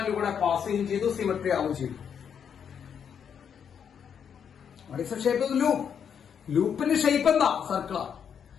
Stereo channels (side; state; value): right; quieter; 7.7 dB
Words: കൂടെ പാസ് ചെയ്യുകയും ചെയ്തു, സിമെട്രി ആവുകയും ചെയ്തു. Shape loop. ലൂപ്പിന്റെ ഷേപ്പ് എന്താ? സർക്കിളാണ്.